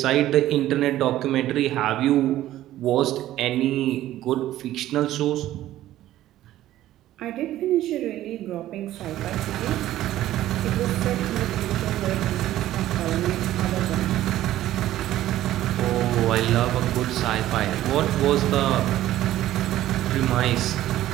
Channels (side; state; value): left; quieter; 14.0 dB